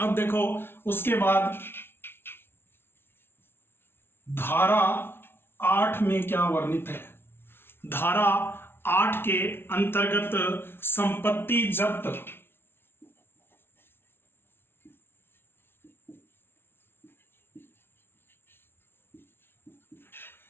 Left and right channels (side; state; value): right; late; 0.11 ms